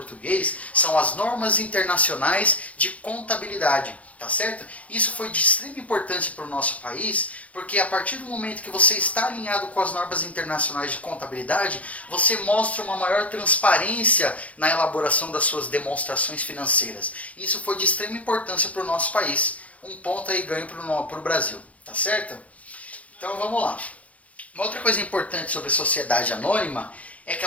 são as normas internacionais de contabilidade, tá certo? Isso foi de extrema importância para o nosso país, porque a partir do momento que você está alinhado com as normas internacionais de contabilidade, você mostra uma maior transparência na elaboração das suas demonstrações financeiras. Isso foi de extrema importância para o nosso país. Um ponto aí ganho para o Brasil, tá certo? Então vamos lá. Uma outra coisa importante sobre a sociedade anônima é que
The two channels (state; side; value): late; right; 0.067 ms